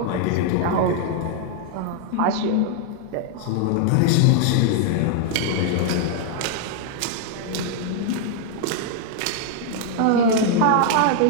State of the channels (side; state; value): both; different; correlation 0.00